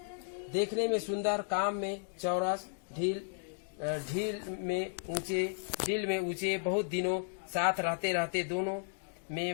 देखने में सुंदर, काम में चौरस, ढील में ऊंचे बहुत दिनों साथ रहते रहते दोनों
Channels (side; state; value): right; silent; digital silence